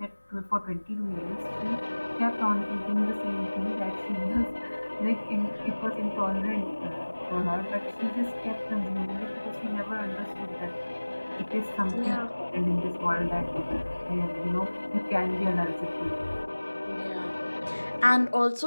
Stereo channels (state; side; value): inverted; both; correlation -1.00